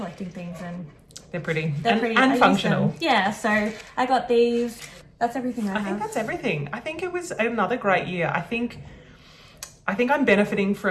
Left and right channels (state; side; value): identical; both; correlation 1.00